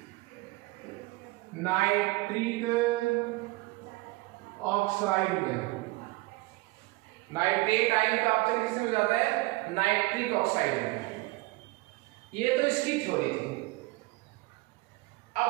नाइट्रिक ऑक्साइड में। नाइट्रेट आयन का अपचयन किसमें हो जाता है, नाइट्रिक ऑक्साइड में। ये तो इसकी थ्योरी थी। अब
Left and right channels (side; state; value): left; quieter; 22.4 dB